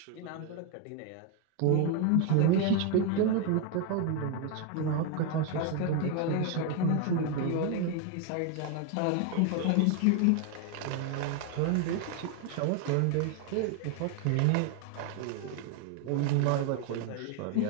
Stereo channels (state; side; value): different; both; correlation 0.01